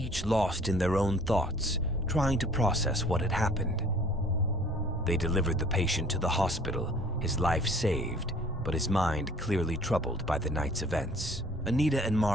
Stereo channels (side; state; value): both; normal; correlation 0.53